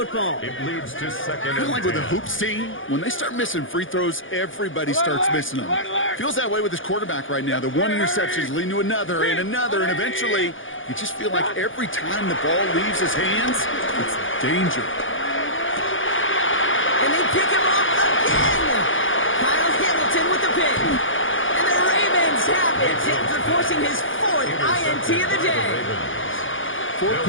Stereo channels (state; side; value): late; right; 0.57 ms